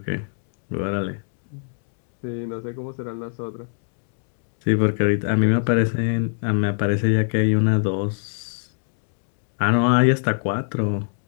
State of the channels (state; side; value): silent; right; digital silence